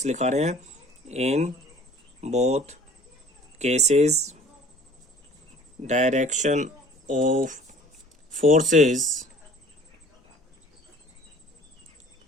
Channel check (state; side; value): normal; both; correlation 0.50